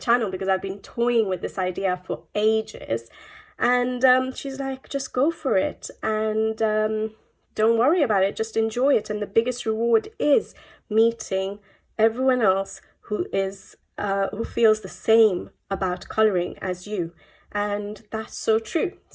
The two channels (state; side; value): identical; both; correlation 1.00